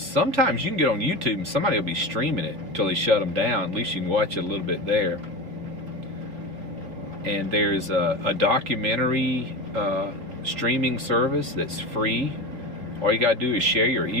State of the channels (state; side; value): late; left; 4.1 ms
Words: you can get on YouTube and somebody will be streaming it until they shut them down. At least you can watch it a little bit there. And there's a documentary streaming service that's free. All you got to do is share your